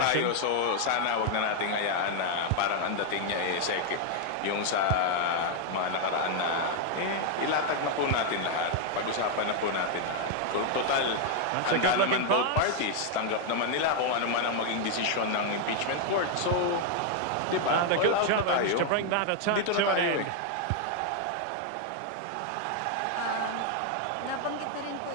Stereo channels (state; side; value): different; both; correlation 0.00